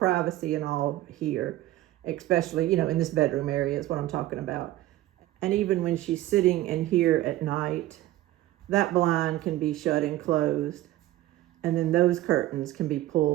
and all here, especially, in this bedroom area is what I'm talking about. And even when she's sitting in here at night, that blind can be shut and closed. And then those curtains can be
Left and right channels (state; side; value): quieter; left; 15.5 dB